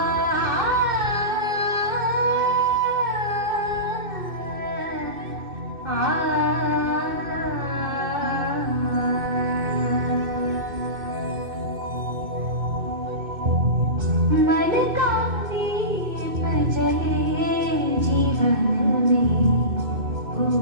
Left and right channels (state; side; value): late; left; 2.6 ms